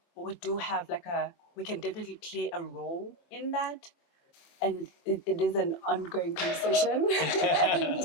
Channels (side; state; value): right; late; 24 ms